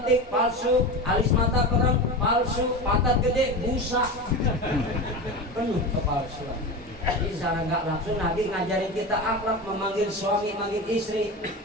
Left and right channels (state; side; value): normal; both; correlation 0.25